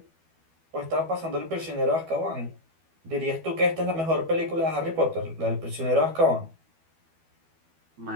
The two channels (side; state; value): left; late; 12 ms